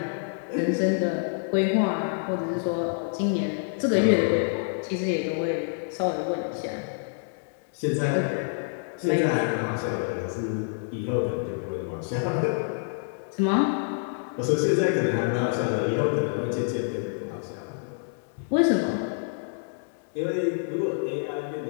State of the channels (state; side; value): silent; right; digital silence